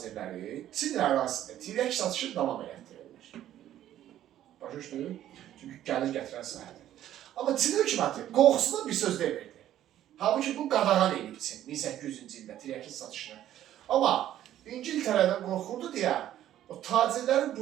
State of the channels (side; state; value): left; quieter; 12.2 dB